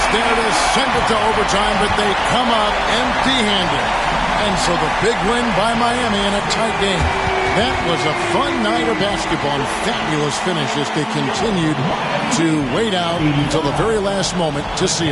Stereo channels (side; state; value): both; identical; correlation 1.00